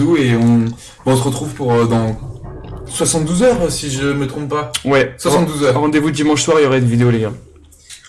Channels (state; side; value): identical; both; correlation 1.00